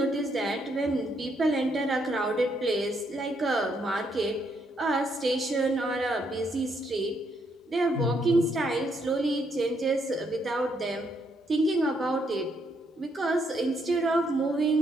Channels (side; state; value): both; normal; correlation 0.74